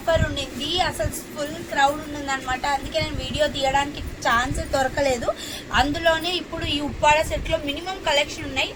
ఉండింది. అసలు ఫుల్ క్రౌడ్ ఉంది అనమాట. అందుకే నేను వీడియో తీయడానికి ఛాన్స్ దొరకలేదు. అందులోనే ఇప్పుడు ఈ ఉప్పాడ సెట్ లో మినిమం కలెక్షన్ ఉన్నాయి.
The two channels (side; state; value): both; identical; correlation 1.00